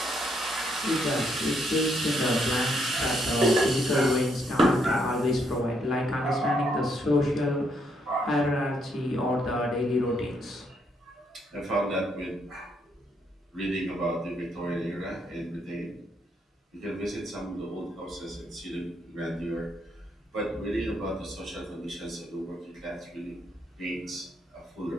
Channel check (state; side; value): normal; both; correlation 0.74